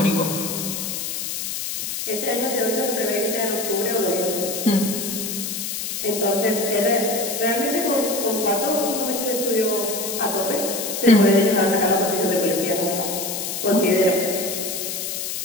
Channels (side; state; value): left; noise; hiss, 4 dB below the sound